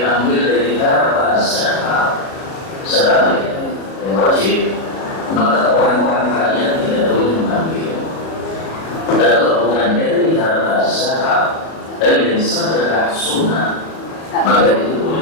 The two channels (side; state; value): right; late; 37 ms